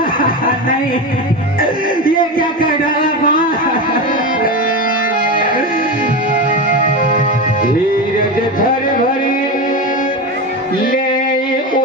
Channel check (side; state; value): both; normal; correlation 0.20